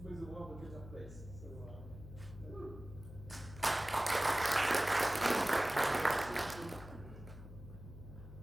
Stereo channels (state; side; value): noise; left; hum, 14 dB below the sound